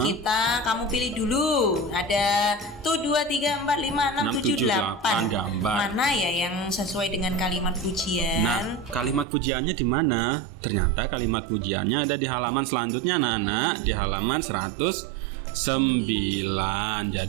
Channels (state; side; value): drops out; left; at 9.2 s